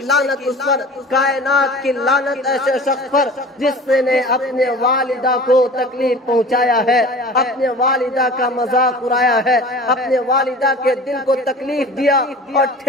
لعنت اس پر، کائنات کی لعنت ایسے شخص پر جس نے اپنے والدہ کو تکلیف پہنچایا ہے، اپنے والدہ کا مذاق اڑایا ہے، اپنے والدہ کے دل کو تکلیف دیا اور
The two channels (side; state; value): both; normal; correlation 0.41